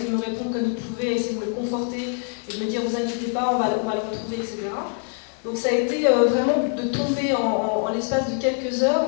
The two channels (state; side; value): quieter; right; 38.9 dB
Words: de me répondre comme il pouvait, essayer de me le conforter et de me dire vous inquiétez pas, on va le retrouver, etc. Donc ça a été vraiment de tomber en l'espace de quelques heures,